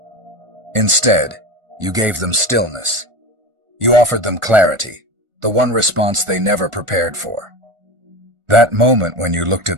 Instead, you gave them stillness. You offered them clarity, the one response they never prepared for. That moment when you looked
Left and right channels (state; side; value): late; left; 1.4 ms